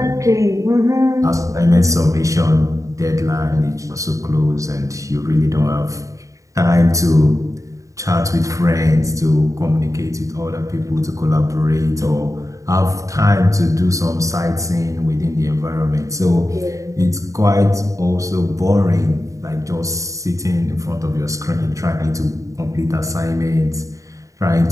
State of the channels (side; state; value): left; late; 0.16 ms